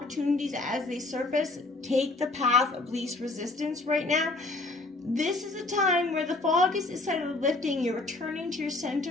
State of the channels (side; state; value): right; quieter; 3.1 dB